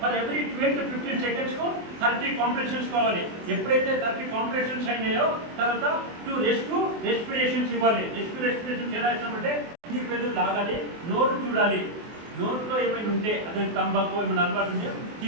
ఎవ్రీ 12 to 15 సెకండ్స్కు 30 కాంప్రెషన్స్ కావాలి. ఎప్పుడైతే 30 కాంప్రెషన్స్ అయినాయో తర్వాత 2 రెస్పిరేషన్స్ ఇవ్వాలి. రెస్పిరేషన్స్ ఎలా ఇస్తామంటే పెద్దలు లాగాలి, నోరు చూడాలి, నోట్లో ఏమైనా ఉంటే అదే తంబాకు ఏమైనా అలవాటు ఉంటే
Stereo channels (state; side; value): late; left; 24 ms